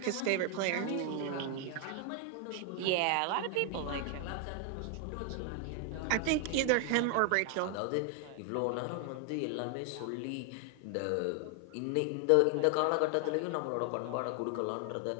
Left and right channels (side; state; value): both; different; correlation 0.00